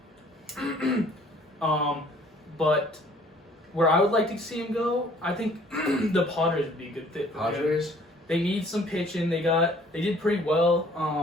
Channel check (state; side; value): normal; both; correlation 0.56